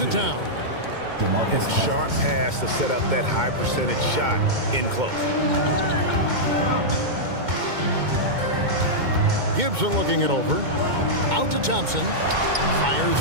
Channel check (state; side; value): late; left; 2.2 ms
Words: down. DeMarcus Sharp pass to set up that high percentage shot in close. Gibson looking it over. Out to Thompson. Fires